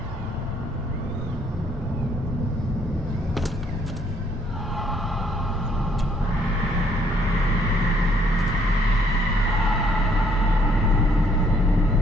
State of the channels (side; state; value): both; normal; correlation 0.66